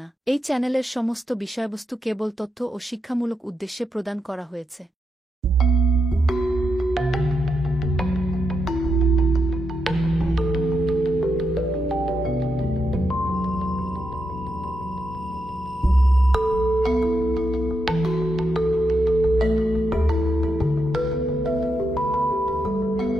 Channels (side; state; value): both; normal; correlation 0.84